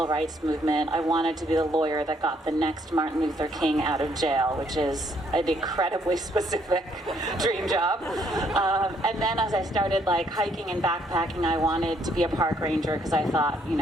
rights movement, I wanted to be the lawyer that got the next Martin Luther King out of jail, which is an incredibly specific dream job. And then as I started hiking and backpacking, I wanted to be a park ranger because I thought, you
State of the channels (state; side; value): normal; both; correlation 0.69